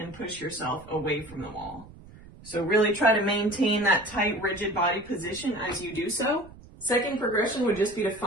push yourself away from the wall. So really try to maintain that tight, rigid body position as you do so. Second progression would just be to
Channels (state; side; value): noise; right; rumble, 20 dB below the sound